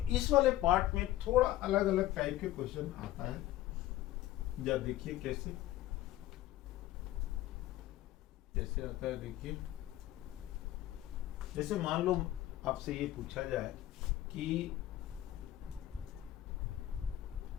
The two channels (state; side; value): quieter; right; 14.7 dB